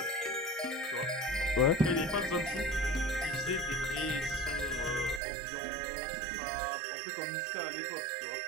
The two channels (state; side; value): drops out; left; at 5.2 s